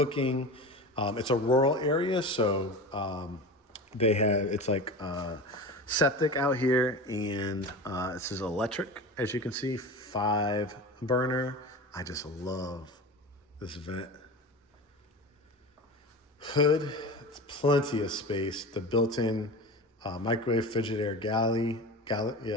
It's a rural area, so it's like septic out here, and this is electric, as you can see, 5 burner. I just love this vent hood. It's plenty of space. The built-in microwave Frigidaire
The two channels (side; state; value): both; normal; correlation 0.30